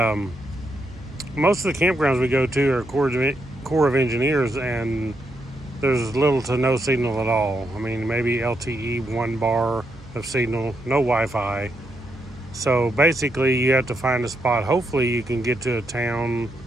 most of the campgrounds we go to are Corps of Engineers, and there's little to no signal at all. I mean, maybe LTE 1 bar of signal, no Wi-Fi. So basically you have to find a spot. Hopefully you can get to a town.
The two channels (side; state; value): right; noise; hum, 20 dB below the sound